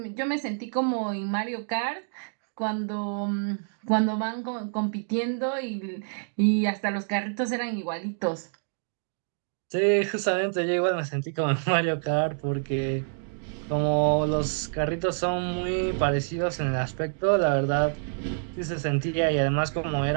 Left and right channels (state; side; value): silent; left; digital silence